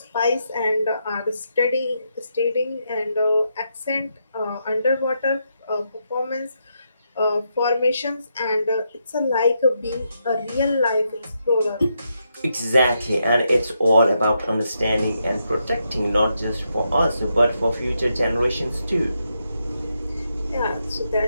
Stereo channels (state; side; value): inverted; both; correlation -0.81